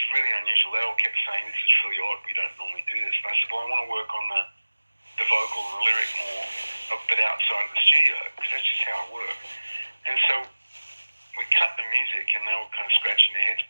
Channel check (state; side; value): inverted; both; correlation -1.00